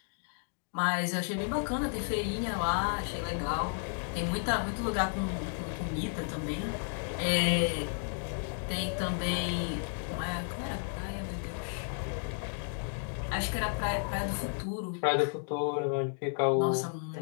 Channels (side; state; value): right; silent; 56 dB below the other